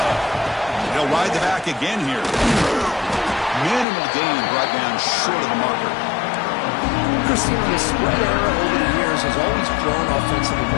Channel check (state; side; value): drops out; right; at 3.9 s